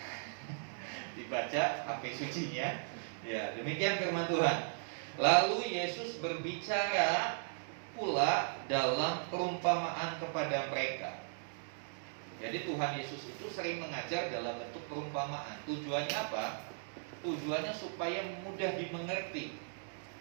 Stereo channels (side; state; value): left; silent; digital silence